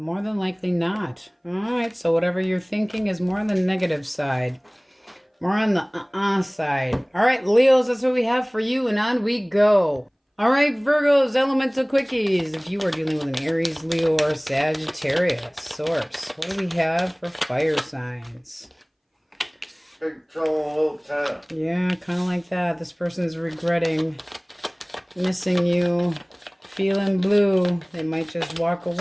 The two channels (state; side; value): identical; both; correlation 1.00